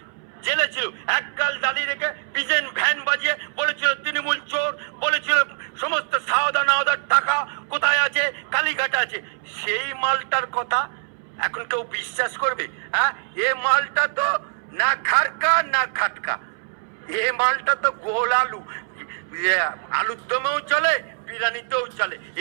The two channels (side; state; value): left; silent; 63 dB below the other